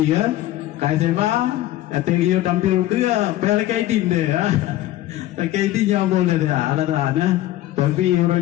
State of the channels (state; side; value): quieter; right; 14.8 dB